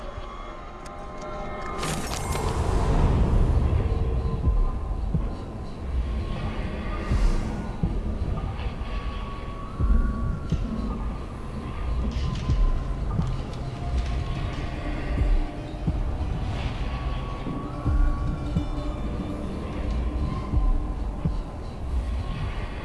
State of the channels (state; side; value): identical; both; correlation 1.00